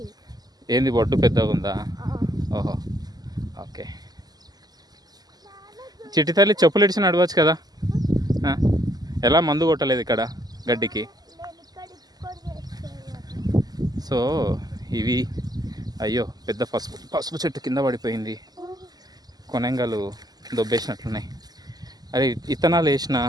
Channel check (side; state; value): left; late; 0.19 ms